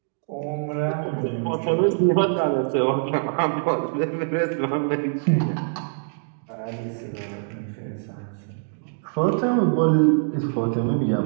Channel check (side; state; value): left; silent; digital silence